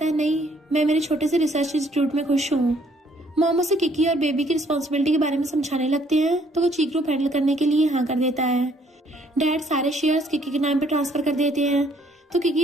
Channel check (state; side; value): normal; both; correlation 0.64